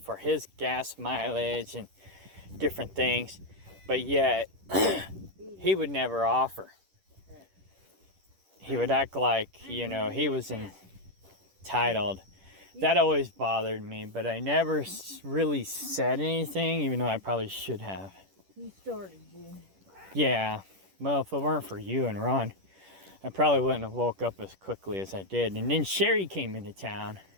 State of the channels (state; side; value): late; left; 10 ms